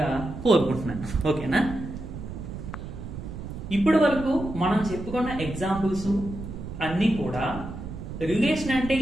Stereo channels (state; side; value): noise; right; rumble, 9 dB below the sound